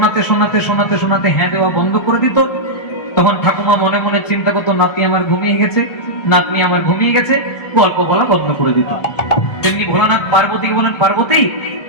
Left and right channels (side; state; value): right; late; 1.3 ms